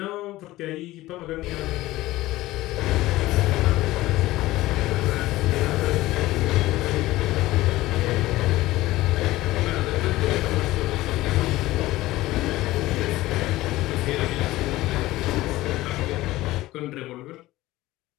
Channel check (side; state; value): right; quieter; 17.4 dB